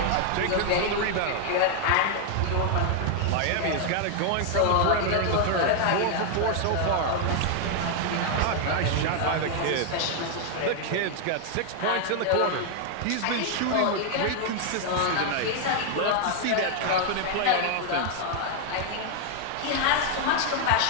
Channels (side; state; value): both; different; correlation 0.00